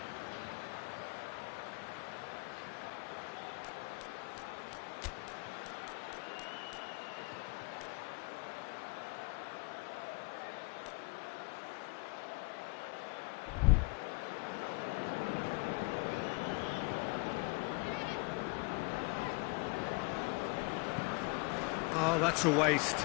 Oh, that's a waste.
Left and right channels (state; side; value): quieter; right; 29.4 dB